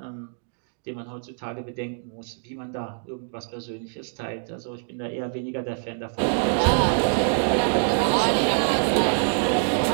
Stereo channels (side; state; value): left; silent; digital silence